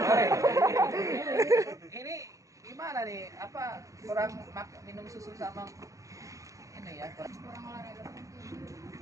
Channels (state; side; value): late; left; 0.16 ms